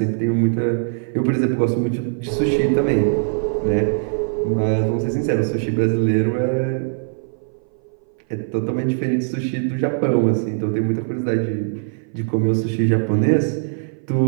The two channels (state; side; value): silent; left; 59 dB below the other